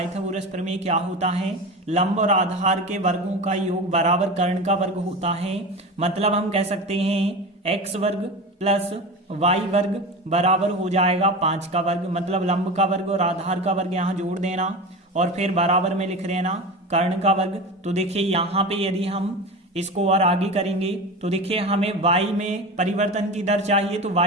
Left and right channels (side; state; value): both; normal; correlation 0.28